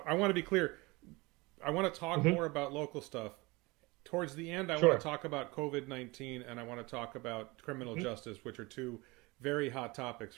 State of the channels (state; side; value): quieter; left; 24.0 dB